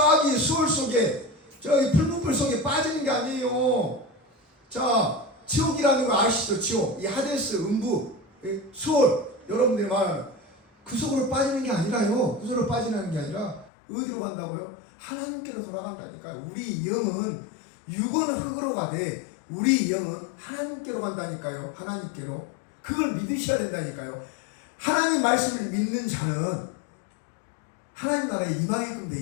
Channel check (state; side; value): drops out; right; at 13.7 s